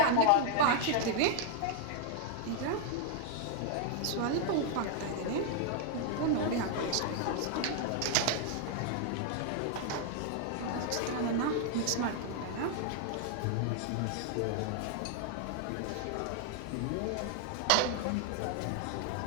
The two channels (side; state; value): both; different; correlation 0.00